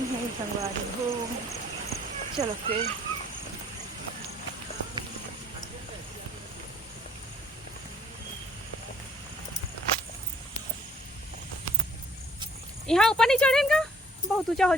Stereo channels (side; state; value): both; normal; correlation 0.58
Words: है संगवारी हो। चलो फिर यहाँ ऊपर नहीं चढ़ेगा, बहुत ऊंचा हो